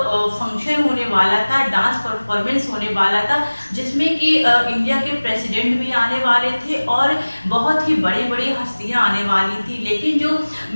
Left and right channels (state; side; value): inverted; both; correlation -1.00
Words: फंक्शन होने वाला था, डांस परफॉर्मेंस होने वाला था, जिसमें कि इंडिया के प्रेसिडेंट भी आने वाले थे और बहुत ही बड़ी बड़ी हस्तियाँ आने वाली थी। लेकिन जो